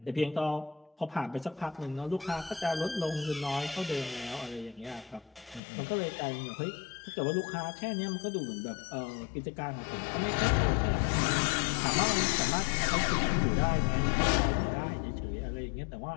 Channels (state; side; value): drops out; right; at 5.6 s